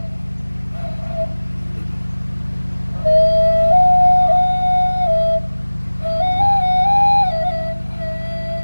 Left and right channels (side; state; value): both; inverted; correlation -1.00